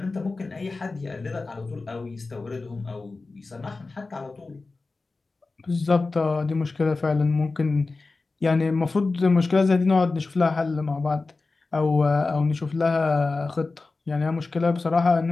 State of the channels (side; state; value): right; quieter; 3.7 dB